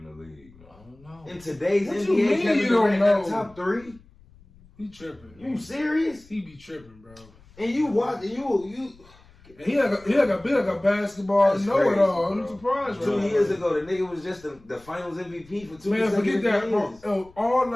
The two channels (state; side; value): noise; left; rumble, 26 dB below the sound